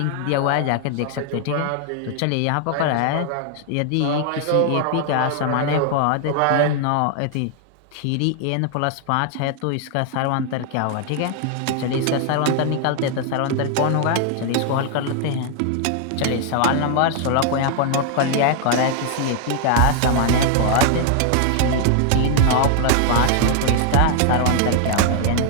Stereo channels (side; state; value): both; different; correlation 0.00